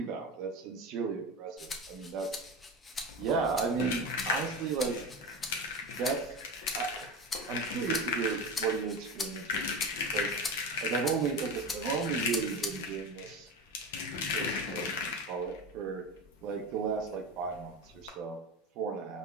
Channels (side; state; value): both; normal; correlation 0.25